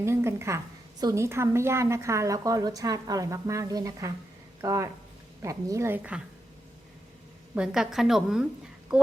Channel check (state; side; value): normal; both; correlation 0.85